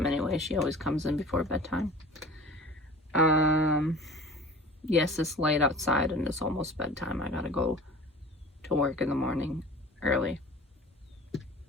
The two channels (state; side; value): normal; both; correlation 0.41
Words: anyway. She always comes in before bedtime. Yes, it's light outside and it's almost bedtime. I gotta go to work in the morning early.